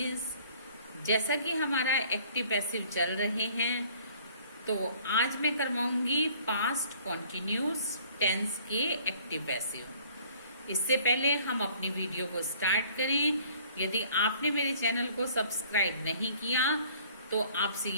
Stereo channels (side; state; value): both; inverted; correlation -0.55